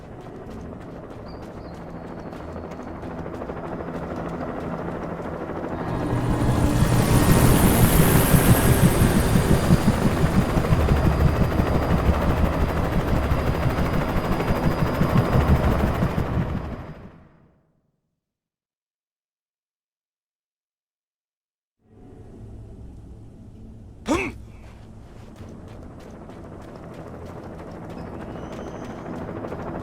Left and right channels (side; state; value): both; identical; correlation 1.00